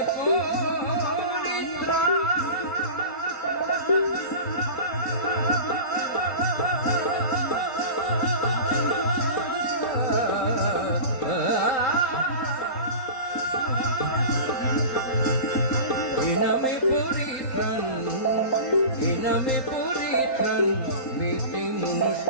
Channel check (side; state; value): right; late; 4.3 ms